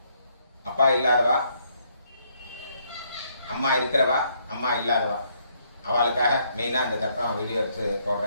அப்பா இல்லாதவா, அம்மா இருக்கிறவா, அம்மா இல்லாதவா அவளுக்காக மெயினாக இந்த தர்ப்பணம் வீடியோ எடுத்து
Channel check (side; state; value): both; inverted; correlation -0.71